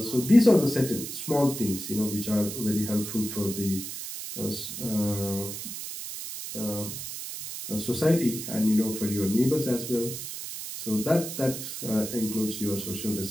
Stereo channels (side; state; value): right; noise; hiss, 7 dB below the sound